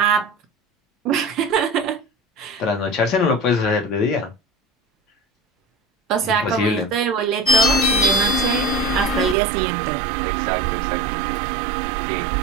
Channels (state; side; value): drops out; left; at 9.3 s